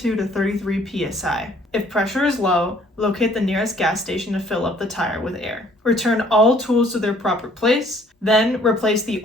to 33 psi. If pressure is low, locate the nearest gas station to fill up the tire with air. Return all tools to their proper place, then replace the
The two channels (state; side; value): normal; both; correlation 0.60